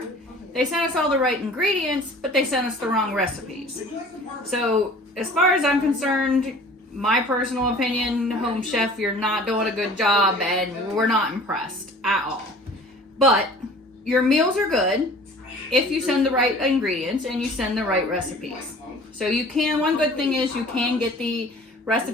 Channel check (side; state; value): both; normal; correlation 0.47